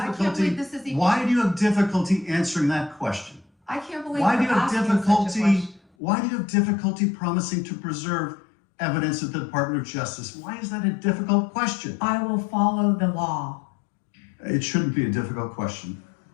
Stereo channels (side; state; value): right; drops out; at 5.8 s